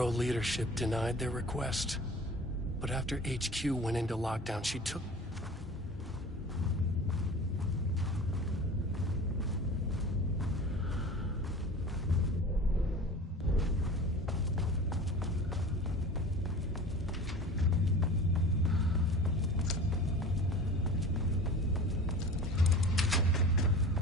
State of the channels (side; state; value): both; normal; correlation 0.38